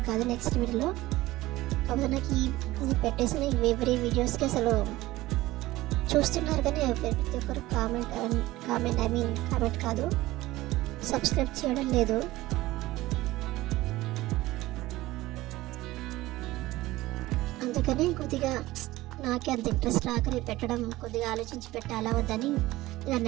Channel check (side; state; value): left; quieter; 17.8 dB